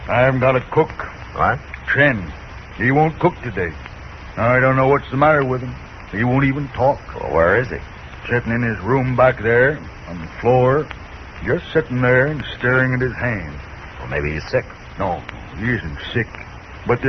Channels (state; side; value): identical; both; correlation 1.00